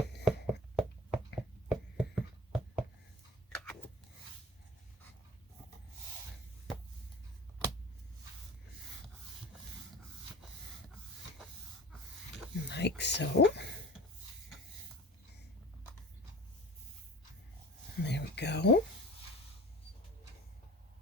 Like so. There we go.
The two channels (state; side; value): normal; both; correlation 0.38